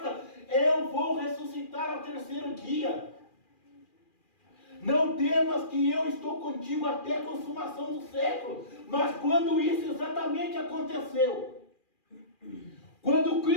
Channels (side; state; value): right; late; 2.4 ms